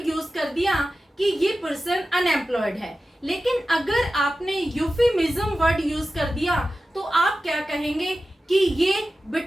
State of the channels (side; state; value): both; normal; correlation 0.94